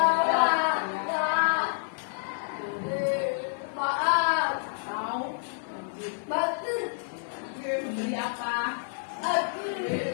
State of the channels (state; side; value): silent; right; digital silence